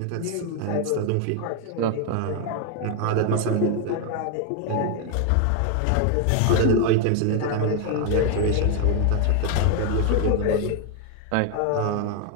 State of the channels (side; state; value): both; different; correlation 0.01